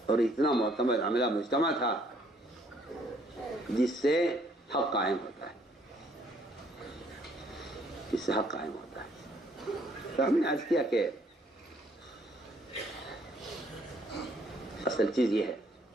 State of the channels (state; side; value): normal; both; correlation 0.65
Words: اور اتنا معتمد عملہ مجتمع تھا جس سے حق قائم ہوتا ہے، جس سے حق قائم ہوتا ہے. تو ہم نے عرض کیا کہ اصل چیز یہ ہے